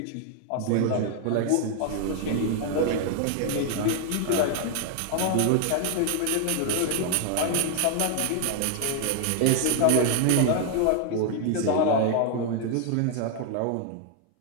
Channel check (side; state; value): both; different; correlation 0.00